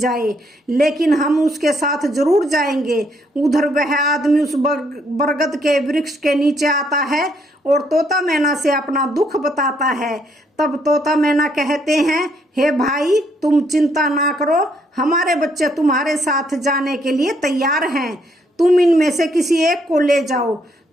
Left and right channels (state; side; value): normal; both; correlation 0.71